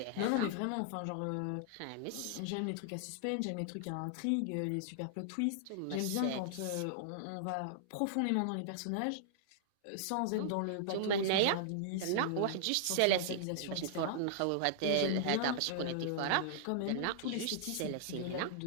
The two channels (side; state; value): both; different; correlation -0.01